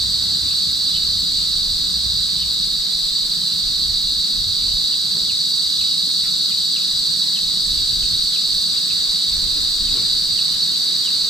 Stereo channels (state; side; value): noise; left; hiss, 20 dB below the sound